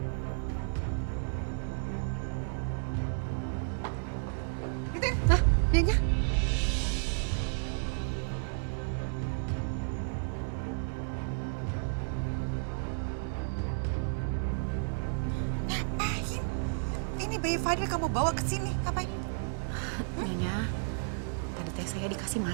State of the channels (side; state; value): left; silent; 56 dB below the other